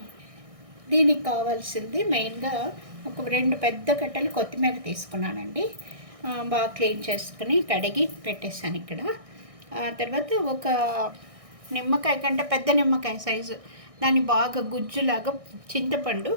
దీనికి కావాల్సింది మెయిన్గా ఒక 2 పెద్ద కట్టలు కొత్తిమీర తీసుకున్నానండి. బాగా క్లీన్ చేసుకుని కడిగి పెట్టేసాను ఇక్కడ. తర్వాత ఒక నిమ్మకాయ కంటే పెద్ద నిమ్మకాయ సైజు దాన్ని బాగా గుజ్జులాగా చింతపండు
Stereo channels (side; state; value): left; late; 1.6 ms